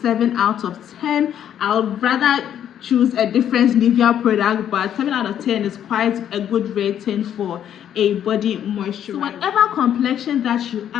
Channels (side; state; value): right; quieter; 9.9 dB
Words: 7 out of 10. I would rather choose a different Nivea product, but 7 out of 10 is quite a good rating for a body moisturizer. So whatever complexion that you